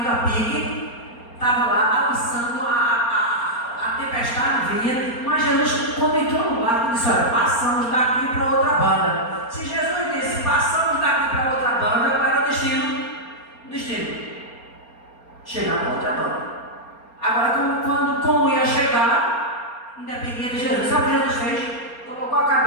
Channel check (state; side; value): late; right; 4.3 ms